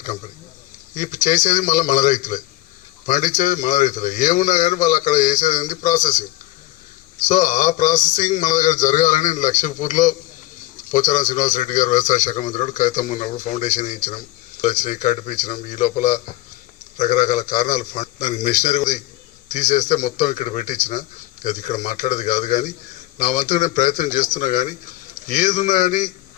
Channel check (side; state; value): right; quieter; 17.0 dB